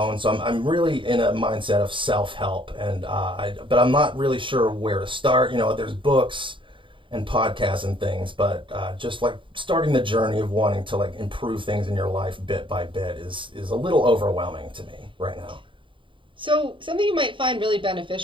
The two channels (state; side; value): late; left; 0.24 ms